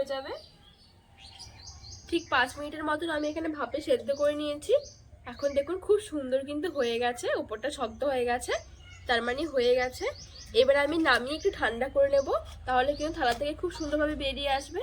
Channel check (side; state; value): both; identical; correlation 1.00